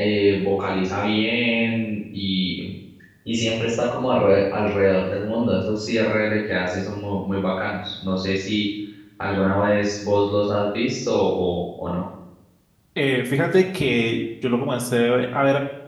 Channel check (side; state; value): both; identical; correlation 1.00